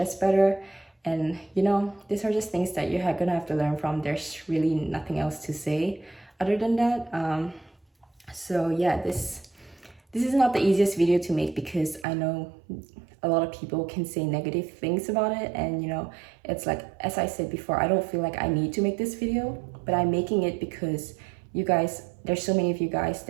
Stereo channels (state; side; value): drops out; left; at 12.1 s